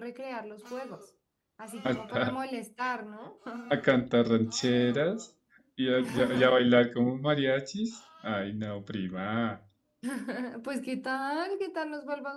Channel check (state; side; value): identical; both; correlation 1.00